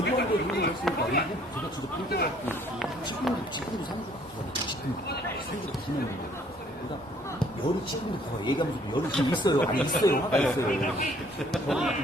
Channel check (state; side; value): normal; both; correlation 0.61